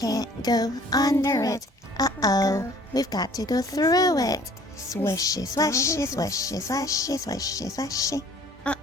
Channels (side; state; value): both; normal; correlation 0.53